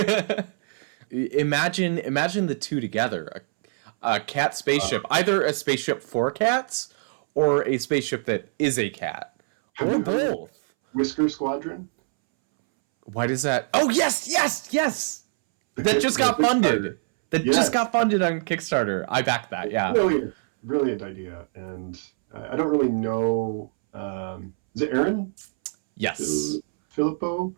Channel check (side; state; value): left; silent; 62 dB below the other